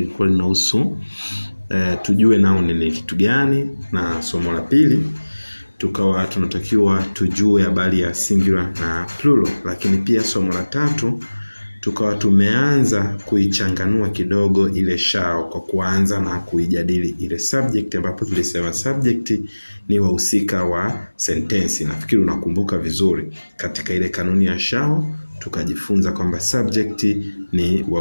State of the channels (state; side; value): inverted; both; correlation -1.00